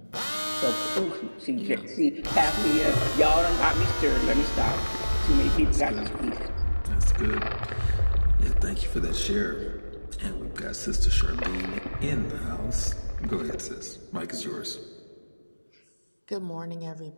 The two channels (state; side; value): inverted; both; correlation -1.00